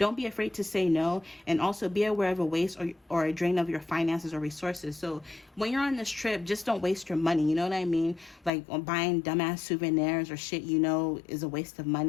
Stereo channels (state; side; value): drops out; right; at 8.5 s